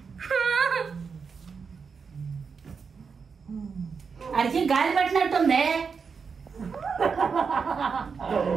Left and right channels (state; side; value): quieter; left; 5.6 dB